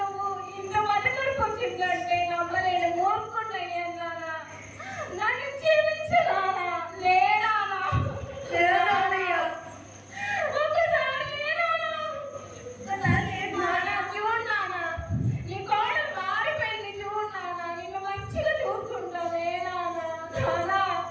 నువ్వు ఇంత మధ్యకరకు వచ్చిందంటే నమ్మలేని మూర్ఖున్నయ్యాను నానా. నన్ను క్షమించనానా, లేనానా, ఒక్కసారి లేనానా, చూడు నానా, నీ కోడలు మారిపోయింది చూడు నానా, నిన్ను మంచిగా చూసుకుంటా లేనానా. నానా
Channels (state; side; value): identical; both; correlation 1.00